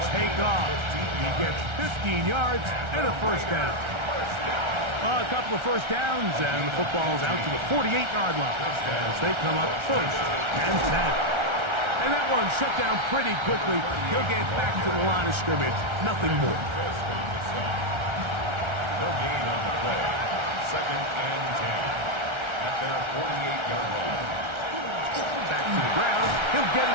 take off. He gets 15 yards and a first down. A couple of first downs, and the football's out to the 48-yard line as they come up 1st and 10. And that one shut down pretty quickly. He'll get back to the line of scrimmage. Nothing more. No gain on the play. 2nd and 10 at their 48-yard line. Back to the ground. He'll get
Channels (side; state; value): left; late; 1.3 ms